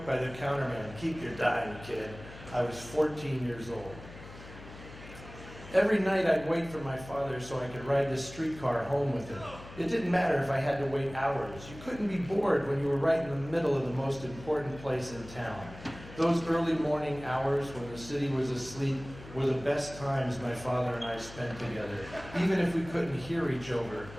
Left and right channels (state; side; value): noise; left; hum, 16 dB below the sound